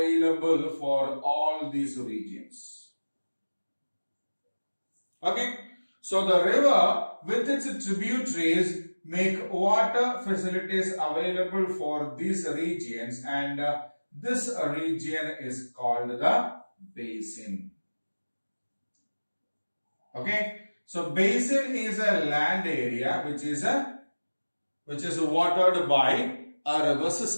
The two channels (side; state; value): both; inverted; correlation -1.00